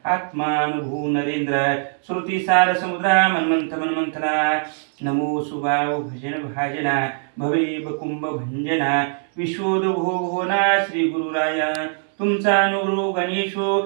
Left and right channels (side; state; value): left; silent; 64 dB below the other